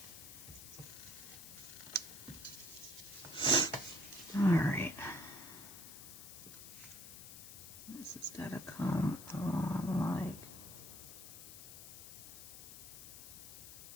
All right. This has got to come along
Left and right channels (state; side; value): noise; left; hiss, 13 dB below the sound